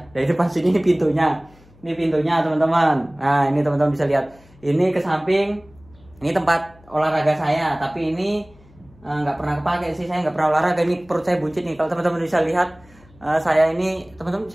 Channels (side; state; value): left; noise; hum, 27 dB below the sound